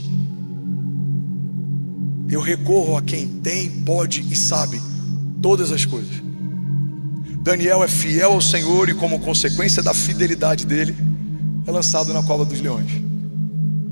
eu recorro a quem tem, pode e sabe todas as coisas. Daniel é fiel ao Senhor e, como consequência da fidelidade dele, é lançado na cova dos leões.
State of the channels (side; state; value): both; inverted; correlation -1.00